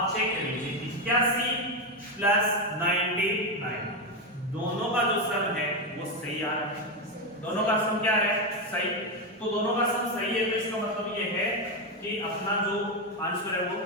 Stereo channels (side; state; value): both; normal; correlation 0.09